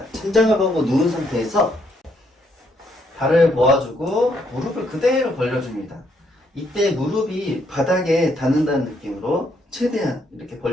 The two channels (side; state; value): both; normal; correlation 0.72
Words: 천장을 보고 누운 상태에서 발을 모아주고 무릎을 그대로 벌려줍니다. 이때 무릎이 바닥에 닿는다는 느낌으로 최대한 이렇게